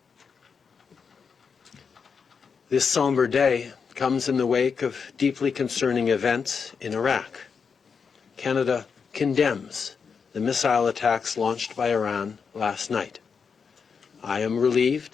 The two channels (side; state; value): right; quieter; 5.9 dB